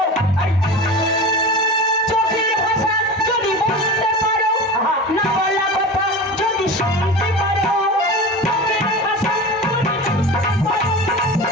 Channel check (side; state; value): both; normal; correlation 0.31